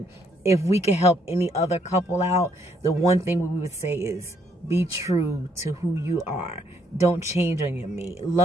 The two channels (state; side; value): normal; both; correlation 0.70